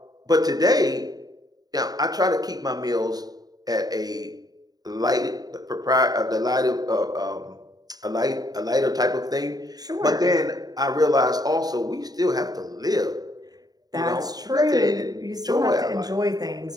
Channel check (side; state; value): left; late; 0.19 ms